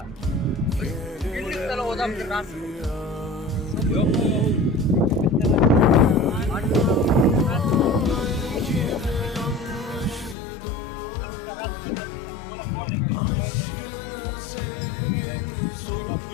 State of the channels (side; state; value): right; drops out; at 10.4 s